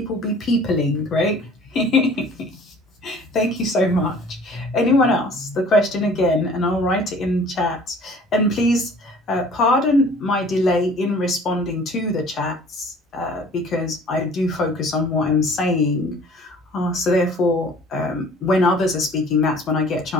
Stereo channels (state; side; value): normal; both; correlation 0.50